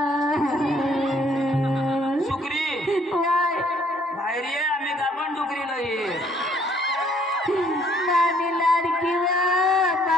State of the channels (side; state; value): both; normal; correlation 0.63